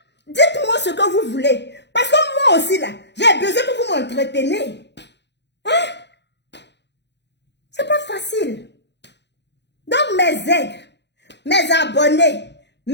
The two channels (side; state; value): right; late; 0.50 ms